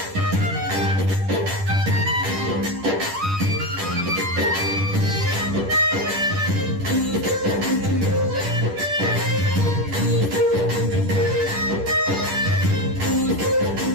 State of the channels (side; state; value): left; late; 10 ms